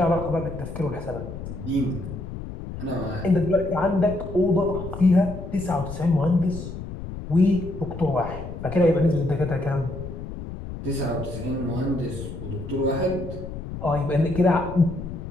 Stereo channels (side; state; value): left; noise; rumble, 9 dB below the sound